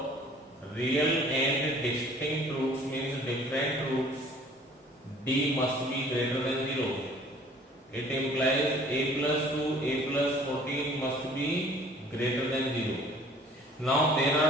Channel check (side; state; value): both; normal; correlation 0.53